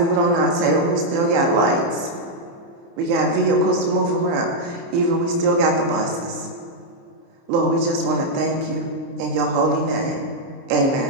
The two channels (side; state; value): left; late; 30 ms